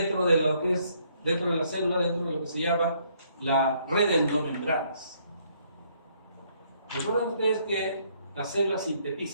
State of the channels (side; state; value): both; inverted; correlation -0.68